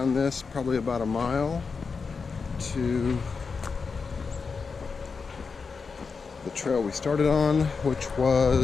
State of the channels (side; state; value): right; quieter; 5.0 dB